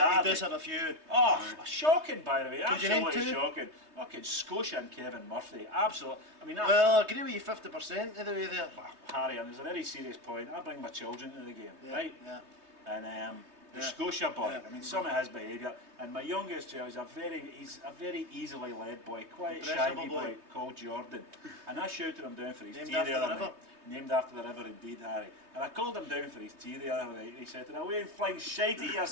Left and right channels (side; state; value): left; late; 3.2 ms